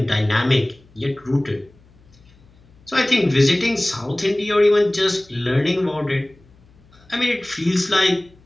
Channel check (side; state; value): left; noise; hum, 29 dB below the sound